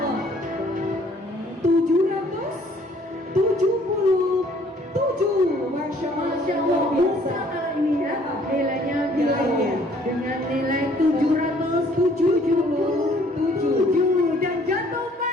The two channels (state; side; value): normal; both; correlation 0.59